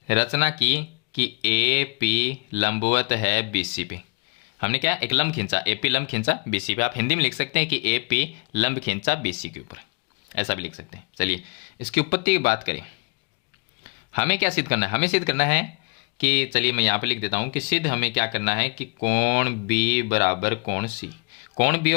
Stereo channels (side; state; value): right; quieter; 33.7 dB